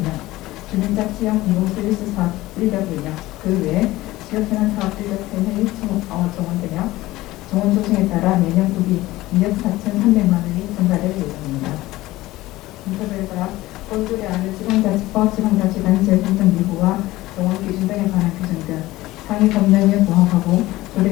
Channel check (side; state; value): right; quieter; 17.8 dB